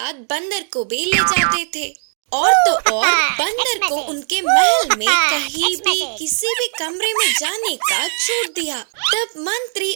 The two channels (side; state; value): left; silent; 67 dB below the other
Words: बंदर को भी ले जाते थे। और तो और बंदर को उनके महल में कहीं भी किसी भी कमरे में जाने का छूट दिया। तब मंत्री